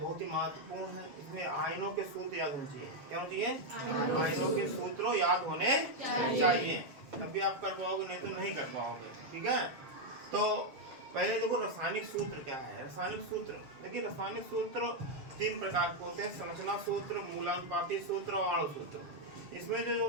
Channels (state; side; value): late; left; 7.1 ms